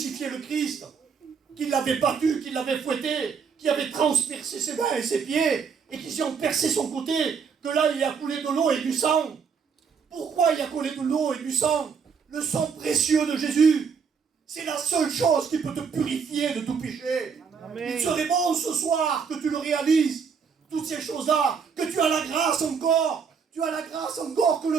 le Christ, qu'ils l'avaient battu, qu'ils l'avaient fouetté, qu'ils avaient transpercé ses mains et ses pieds, et qu'ils ont percé son côté, que là il y a coulé de l'eau et du sang. Pourquoi il y a coulé de l'eau et du sang? Le sang précieux de Jésus. C'est la seule chose qui peut te purifier de tout péché. Amen. Il serait bon ce soir que tu le réalises. Toutes ces choses-là, que tu as la grâce encore. Tu as la grâce encore que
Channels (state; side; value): quieter; left; 6.1 dB